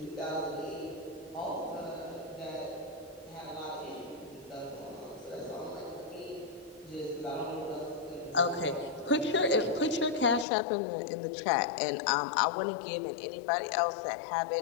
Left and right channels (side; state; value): right; drops out; at 10.5 s